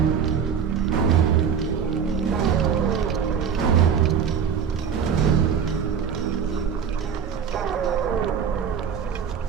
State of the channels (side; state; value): left; quieter; 7.3 dB